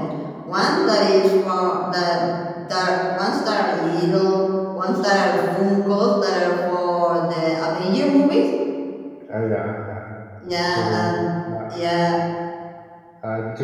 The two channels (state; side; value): identical; both; correlation 1.00